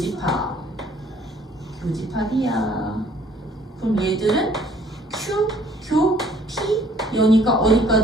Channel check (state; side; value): normal; both; correlation 0.59